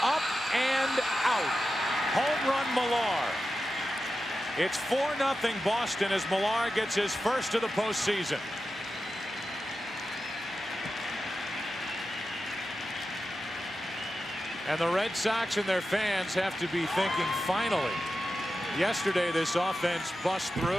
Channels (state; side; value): normal; both; correlation 0.92